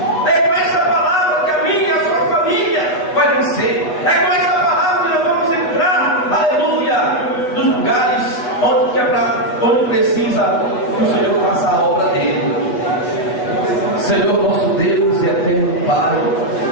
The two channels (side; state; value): right; late; 8.0 ms